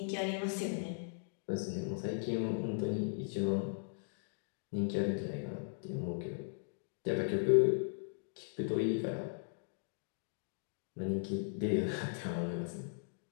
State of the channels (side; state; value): right; silent; digital silence